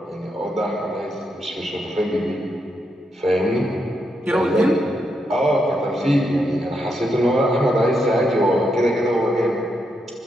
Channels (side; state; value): both; normal; correlation 0.81